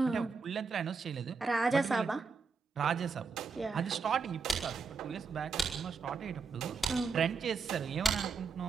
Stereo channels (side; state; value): left; quieter; 5.0 dB